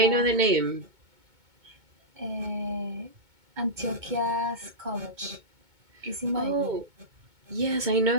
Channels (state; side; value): late; left; 2.2 ms